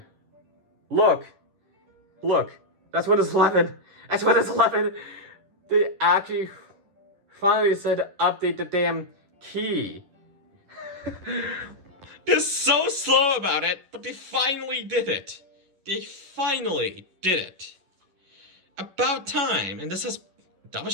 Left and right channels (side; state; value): left; late; 10 ms